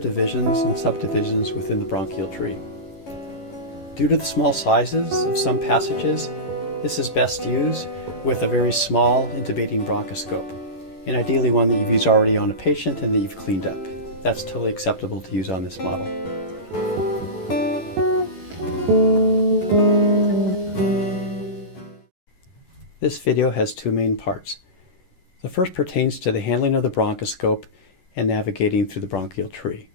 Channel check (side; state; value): right; late; 11 ms